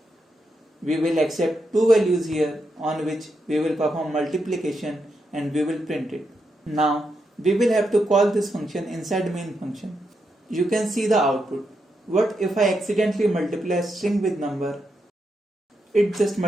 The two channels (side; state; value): both; normal; correlation 0.83